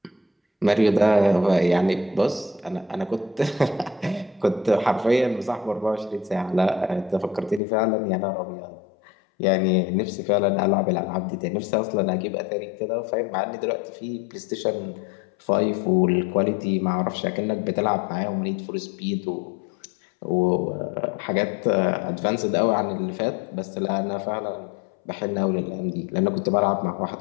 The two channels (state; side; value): drops out; right; at 7.6 s